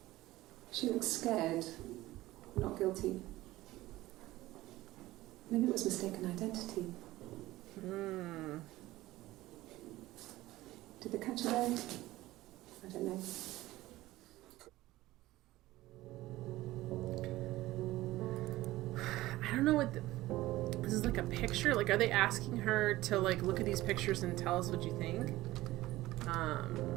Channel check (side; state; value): left; quieter; 17.2 dB